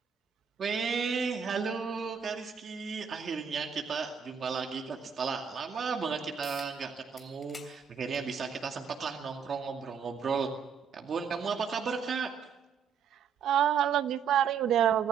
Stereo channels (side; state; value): left; quieter; 7.0 dB